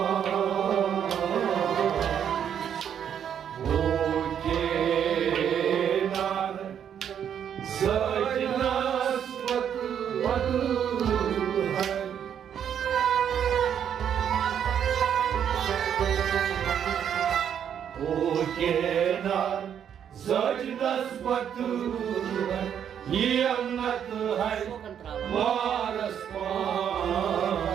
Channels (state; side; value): quieter; left; 8.8 dB